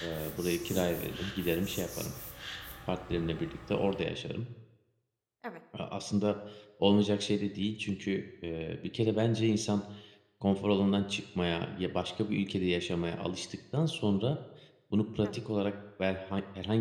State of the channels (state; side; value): identical; both; correlation 1.00